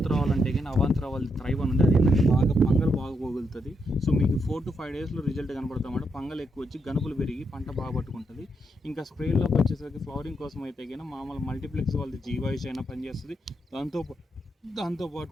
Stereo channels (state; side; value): normal; both; correlation 0.80